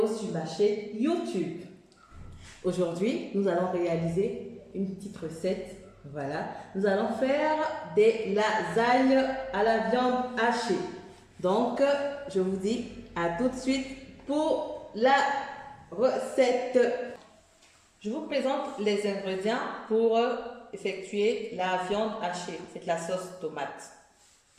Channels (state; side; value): identical; both; correlation 1.00